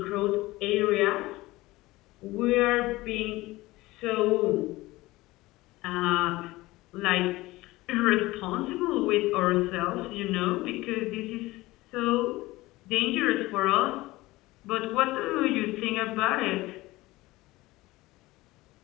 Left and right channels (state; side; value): quieter; right; 19.4 dB